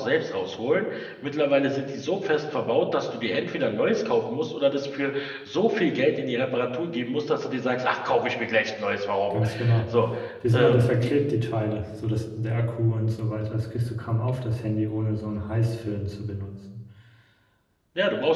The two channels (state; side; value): identical; both; correlation 1.00